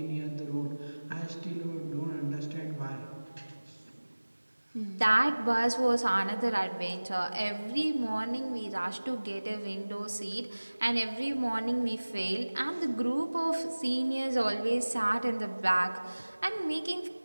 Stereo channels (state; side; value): inverted; both; correlation -1.00